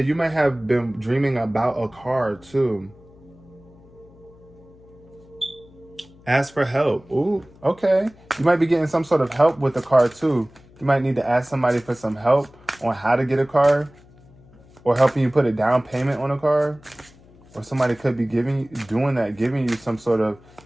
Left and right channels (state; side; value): noise; left; hum, 26 dB below the sound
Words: might have been dreaming about a car too. Ask for help. Ooh, okay. You might be getting some sort of help with the car too. You might need to ask somebody for some help on how to get a car, or helping you put a down payment on a car. Or somebody could be giving you some sort of